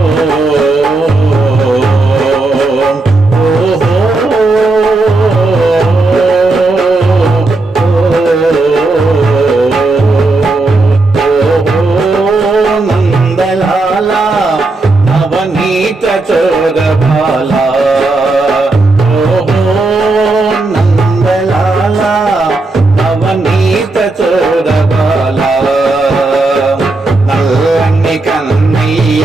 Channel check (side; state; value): left; quieter; 3.2 dB